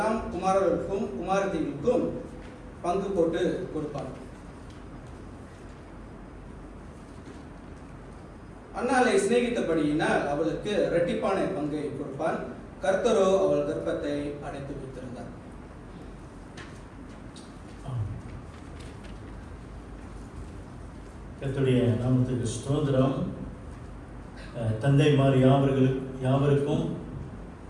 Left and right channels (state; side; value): identical; both; correlation 1.00